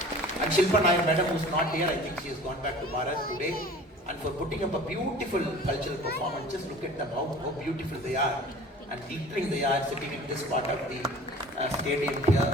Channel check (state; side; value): normal; both; correlation 0.44